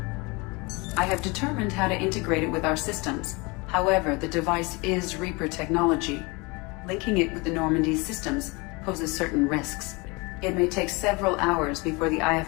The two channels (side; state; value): right; quieter; 26.9 dB